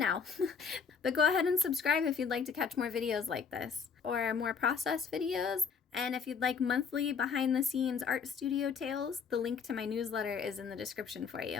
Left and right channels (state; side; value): quieter; right; 6.1 dB